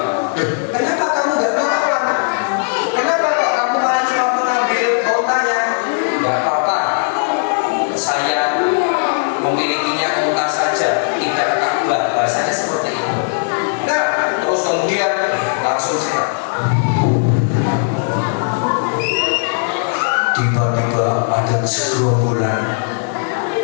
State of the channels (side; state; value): right; silent; digital silence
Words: Kenapa kamu gak melawan? Kenapa kok kamu malah cuma mengambil untanya? Gak apa-apa, saya memilikinya unta saja, tidak Ka'bah. Bahasanya seperti itu. Nah, terus kemudian langsung saya tiba-tiba ada segerombolan